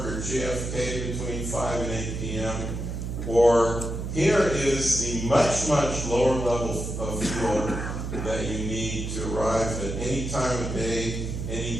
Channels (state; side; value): noise; right; hum, 5 dB below the sound